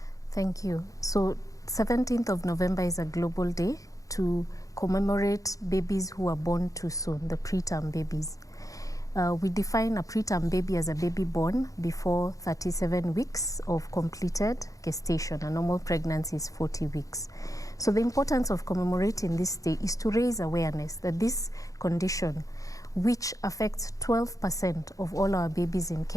Thank you. So 17th of November is a global day to commemorate babies who are born too soon, the preterm babies. We define a preterm baby as a baby born before 37 weeks of completed gestation. A normal pregnancy is 40 weeks. So the importance of commemorating this day is to raise awareness that this condition, which affects 12% of all our babies in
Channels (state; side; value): late; right; 0.16 ms